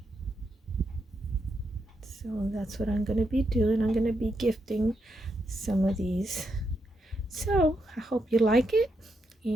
So that's what I'm going to be doing. I'm going to be gifting some of these. So I hope you like it,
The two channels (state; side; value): normal; both; correlation 0.82